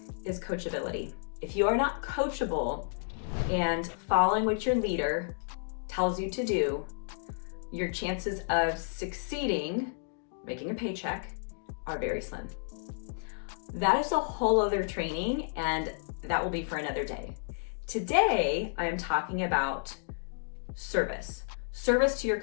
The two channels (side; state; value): right; silent; digital silence